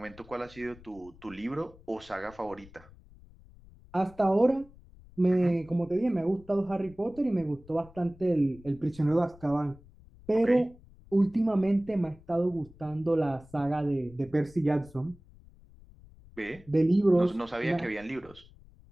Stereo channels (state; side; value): noise; left; rumble, 23 dB below the sound